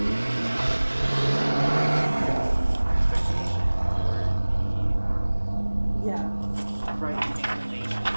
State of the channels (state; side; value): inverted; both; correlation -1.00